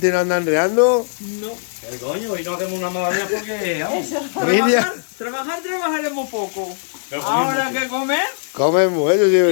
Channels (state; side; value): silent; right; digital silence